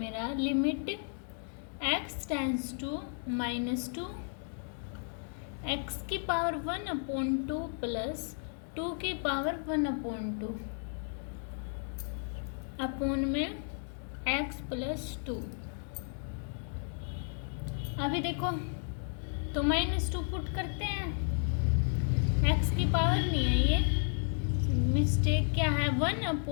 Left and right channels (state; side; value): silent; right; 56 dB below the other